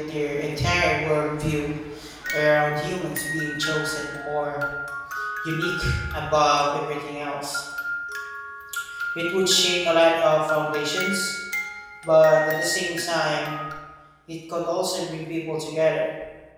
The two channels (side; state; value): both; identical; correlation 1.00